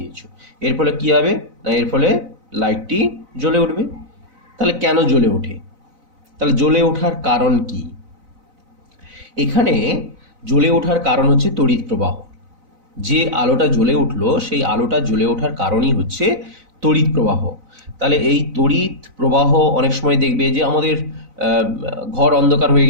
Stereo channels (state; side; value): late; left; 4.0 ms